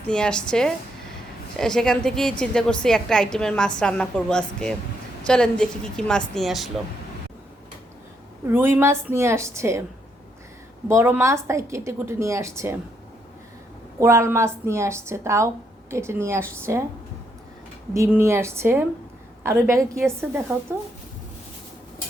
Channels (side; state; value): both; normal; correlation 0.76